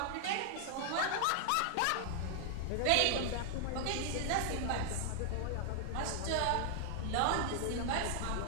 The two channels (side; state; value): both; different; correlation 0.00